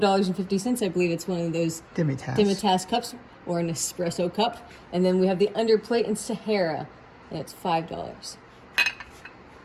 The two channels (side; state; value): both; identical; correlation 1.00